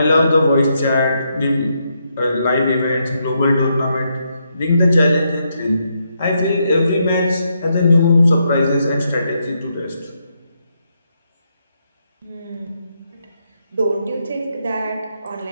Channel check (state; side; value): inverted; both; correlation -0.79